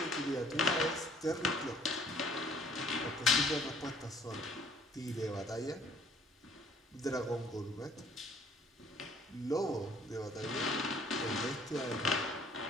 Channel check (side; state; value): both; normal; correlation 0.59